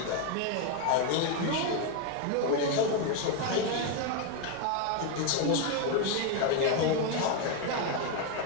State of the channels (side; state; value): both; different; correlation 0.01